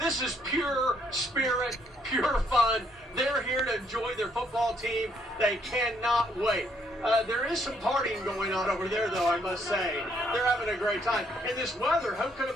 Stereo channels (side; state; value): both; normal; correlation 0.70